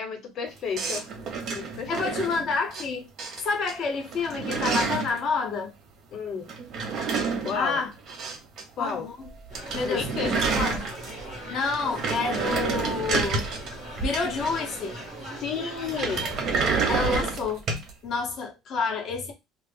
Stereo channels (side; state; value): both; normal; correlation 0.52